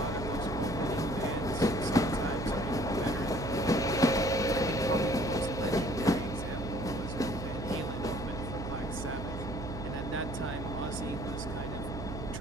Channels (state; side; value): noise; right; hum, 6 dB below the sound